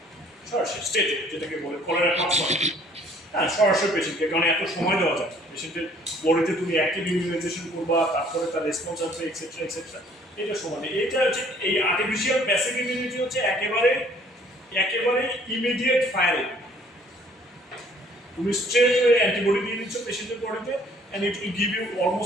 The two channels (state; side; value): normal; both; correlation 0.58